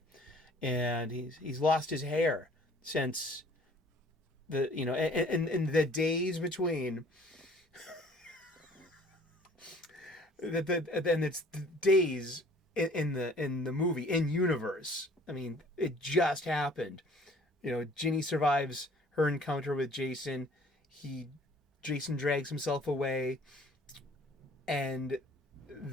and he's lost his hair since and the days between. Then it's the days in the movie in universe. I mean, it just happened. Ginny survives her encounter with Jason. Jason drags himself away, and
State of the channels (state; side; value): normal; both; correlation 0.54